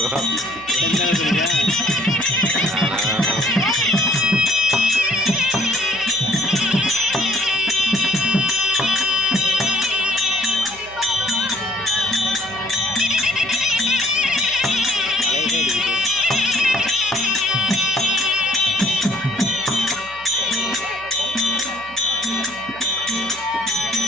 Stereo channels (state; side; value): noise; right; hum, 22 dB below the sound